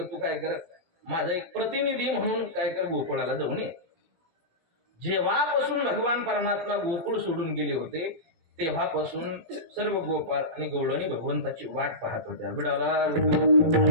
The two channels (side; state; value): left; late; 18 ms